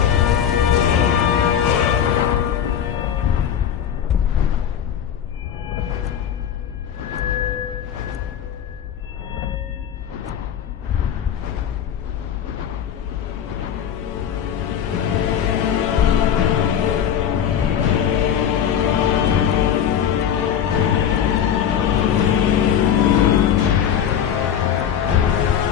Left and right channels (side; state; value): right; quieter; 9.1 dB